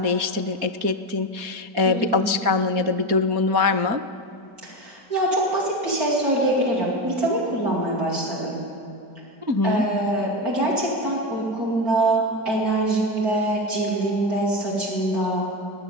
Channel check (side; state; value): left; late; 4.2 ms